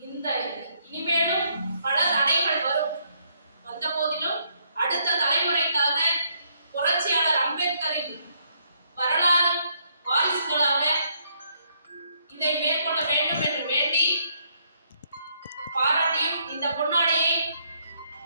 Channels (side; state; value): both; inverted; correlation -0.71